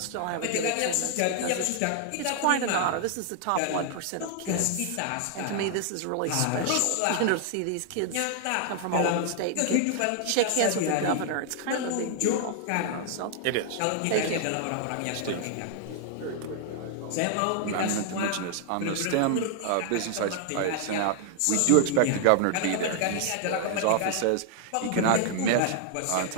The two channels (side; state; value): both; different; correlation 0.00